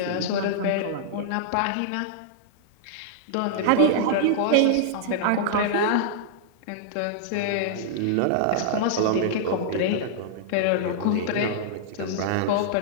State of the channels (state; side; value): different; both; correlation -0.01